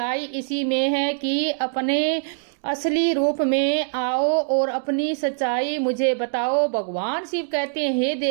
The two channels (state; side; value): silent; left; digital silence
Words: इसी में है कि अपने असली रूप में आओ और अपनी सच्चाई मुझे बताओ। भगवान शिव कहते हैं, हे